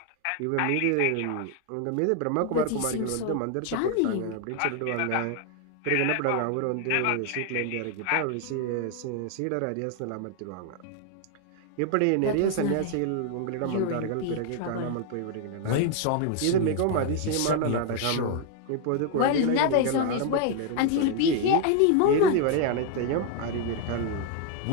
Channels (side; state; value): both; different; correlation 0.00